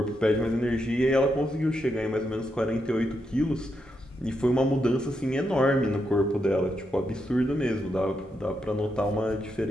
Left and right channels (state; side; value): normal; both; correlation 0.83